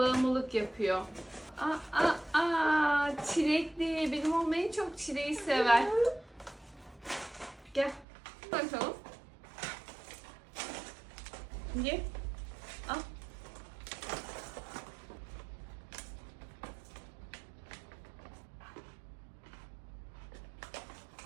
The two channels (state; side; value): drops out; left; at 8.1 s